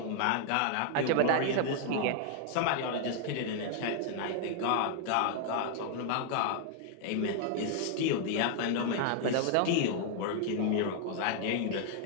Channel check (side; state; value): both; different; correlation 0.00